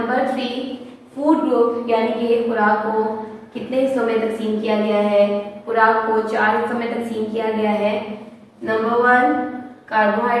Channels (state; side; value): identical; both; correlation 1.00